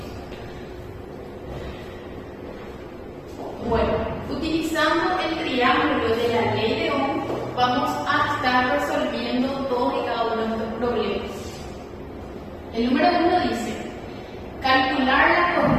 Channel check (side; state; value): both; identical; correlation 1.00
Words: Bueno, utilizando el triángulo de la ley de Ohm, vamos a estar resolviendo todos y cada uno de estos problemas. El número 1 dice, calcular la